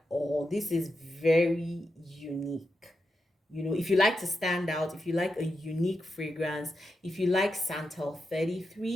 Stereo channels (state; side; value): normal; both; correlation 0.87